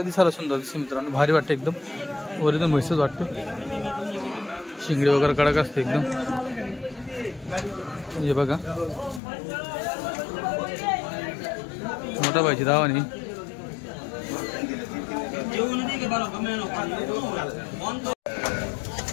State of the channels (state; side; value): drops out; right; at 9.2 s